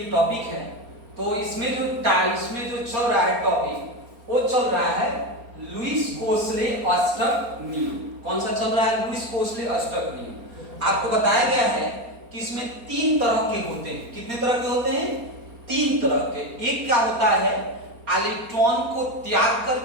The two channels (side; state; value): left; late; 4.3 ms